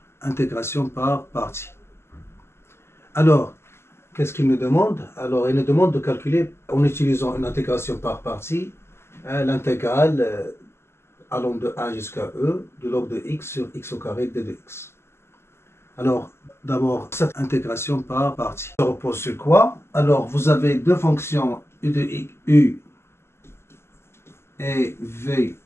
intégration par partie. Alors, qu'est-ce qu'il nous demande? Alors, il nous demande de calculer, en utilisant une intégration par partie, l'intégrale allant de 1 jusqu'à e du log de x sur x au carré d de x. Alors, d'abord, cette intégration par partie. Ça repose sur quoi? Alors, vous avez deux fonctions u de x, u et v.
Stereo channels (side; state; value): right; late; 0.12 ms